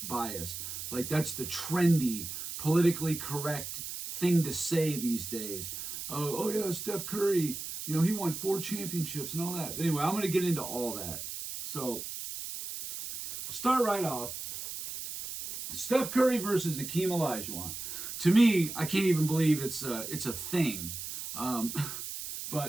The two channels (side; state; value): right; noise; hiss, 7 dB below the sound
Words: bias. Like, that's the trendy, politically correct thing to say these days. Oh yeah, Steph Curry, he won 4 championships and all that. But anyway, I'm going to get into all that. So, start right off. Steph Curry versus Hakeem Olajuwon. To me, I can't even believe it's a thing.